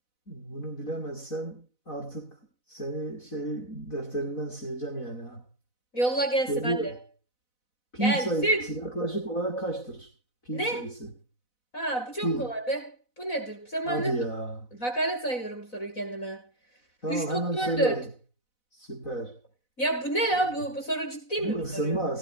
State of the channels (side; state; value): right; late; 4.0 ms